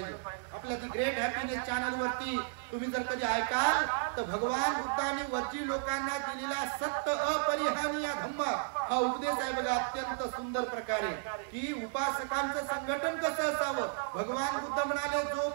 आपल्या दी ग्रेट हॅपीनेस चॅनल वरती तुम्ही जर कधी ऐकाल तर भगवान बुद्धाने वज्जी लोकांना दिलेला सत्य अपरिहानीय धम्म हा उपदेश आहे बघा, अत्यंत सुंदर प्रकारे, की उपासकांचं संघटन कसं असावं। भगवान बुद्ध म्हणाले,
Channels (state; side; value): silent; left; digital silence